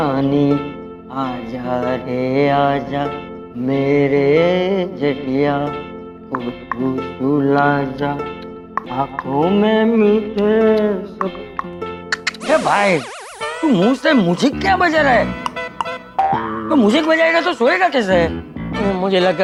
आजा रे आजा मेरे जटिया, तू सुला जा आंखों में मीठे सब। ए भाई, तू मुंह से म्यूजिक क्या बजा रहा है? तो म्यूजिक बजाएगा तो सोएगा कैसे? मुझे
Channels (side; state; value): both; identical; correlation 1.00